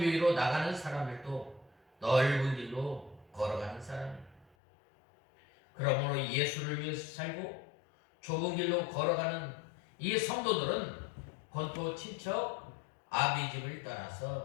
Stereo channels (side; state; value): right; drops out; at 4.5 s